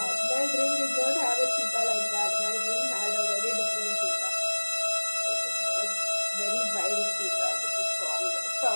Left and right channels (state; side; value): inverted; both; correlation -1.00